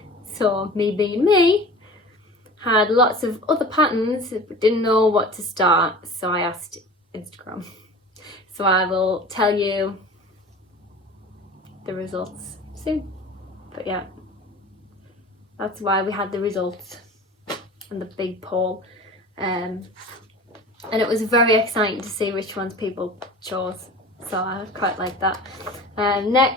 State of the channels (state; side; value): normal; both; correlation 0.39